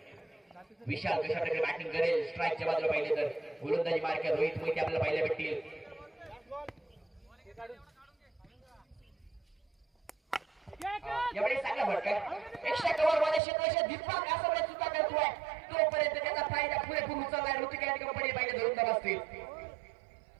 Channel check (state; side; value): drops out; left; at 13.4 s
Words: विशाल कशा प्रकारे बॅटिंग करेल स्ट्राईकच्या बाजूला पाहिले तर गोलंदाजी मार्ग रोहित मोहिते आपल्याला पाहायला भेटतील. यावेळी चांगला फटका एक्स्ट्रा कव्हर मध्ये क्षेत्राच्या दीपक आसवले चुका करतोय. तोपर्यंत त्याचा फायदा पुरेपूर उचललाय. ऋतिक कंपनी पाहिजे 2 धावा असतील.